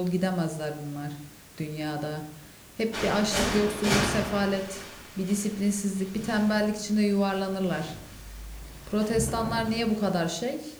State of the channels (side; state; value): both; identical; correlation 1.00